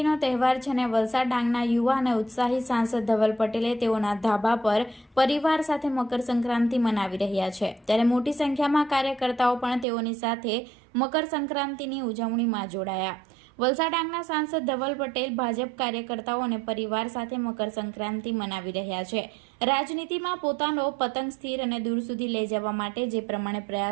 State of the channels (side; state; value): left; drops out; at 9.9 s